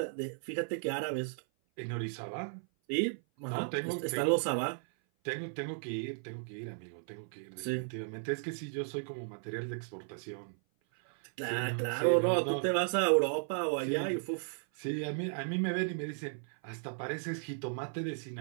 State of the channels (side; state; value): left; silent; 54 dB below the other